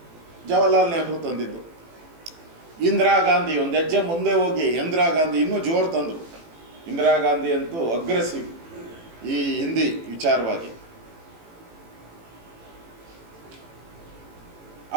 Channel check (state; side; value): late; left; 18 ms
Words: ಜವಾಹರ್ಲಾಲ್ ನೆಹರು ತಂದಿದ್ದು. ಇಂದಿರಾ ಗಾಂಧಿ ಒಂದು ಹೆಜ್ಜೆ ಮುಂದೆ ಹೋಗಿ ಇಂದಿರಾ ಗಾಂಧಿ ಇನ್ನೂ ಜೋರು ತಂದರು. ಇಂದಿರಾ ಗಾಂಧಿ ಅಂತೂ ಅಗ್ರೆಸಿವ್ ಈ ಹಿಂದಿ ವಿಚಾರವಾಗಿ.